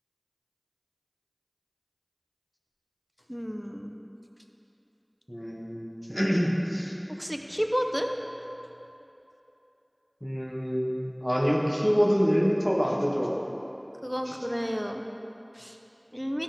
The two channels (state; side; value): identical; both; correlation 1.00